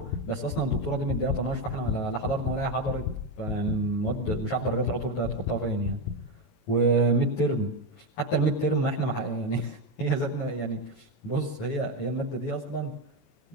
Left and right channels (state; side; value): late; right; 19 ms